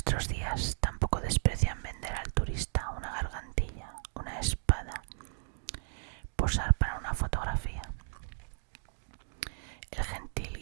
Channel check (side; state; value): left; silent; digital silence